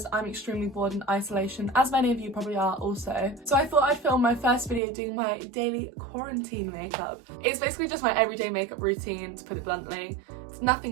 I'm extremely bored in isolation, as many of you probably are also. So I thought I'd film my first video doing my daily quarantine makeup. It's basically just my everyday makeup routine, to put it bluntly. It's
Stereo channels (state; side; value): drops out; left; at 4.8 s